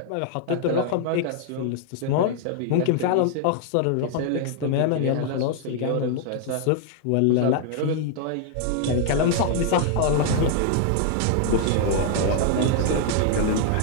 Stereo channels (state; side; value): different; both; correlation 0.00